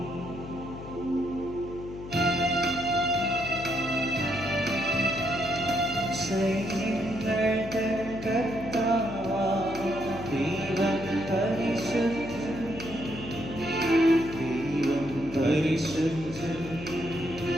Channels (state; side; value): noise; left; hum, 12 dB below the sound